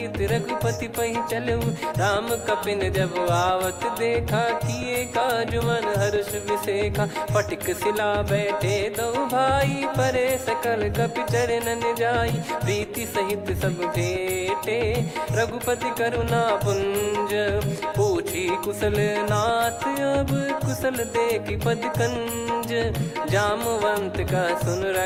रघुपति पहि चलेऊ, राम कपिन जब आवत देखा, किए काज मन हर्ष विसेखा, फटिक सिला बैठे दो भाई, परे सकल कपि चरणन जाई, प्रीति सहित सब भेटे, रघुपति करुणा पुंज, पूछी कुशल नाथ अब कुशल देखि पद कंज, जामवंत का सुन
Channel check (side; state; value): both; identical; correlation 1.00